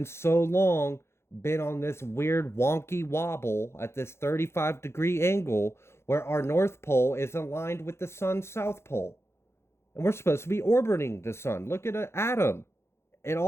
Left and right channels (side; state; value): right; late; 0.12 ms